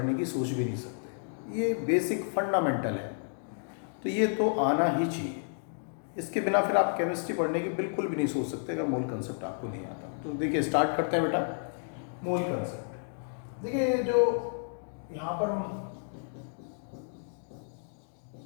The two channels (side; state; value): right; silent; digital silence